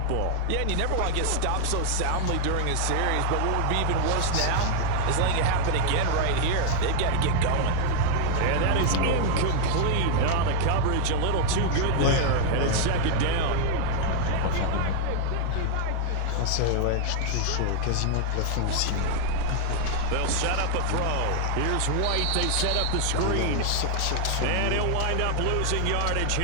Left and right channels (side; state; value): both; different; correlation 0.00